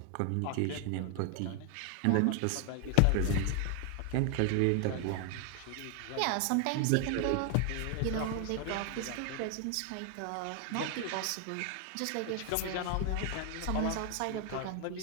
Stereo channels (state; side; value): different; both; correlation 0.00